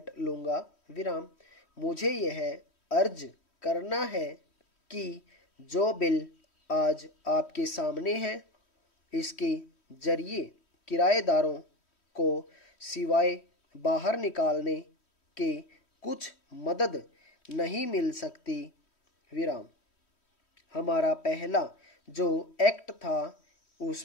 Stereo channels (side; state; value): right; late; 3.1 ms